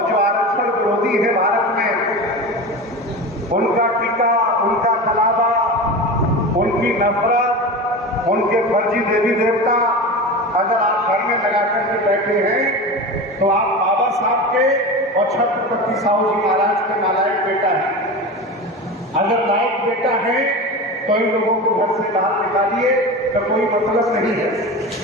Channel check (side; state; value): both; normal; correlation 0.28